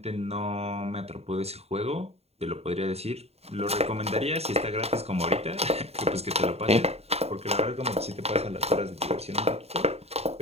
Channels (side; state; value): left; late; 0.30 ms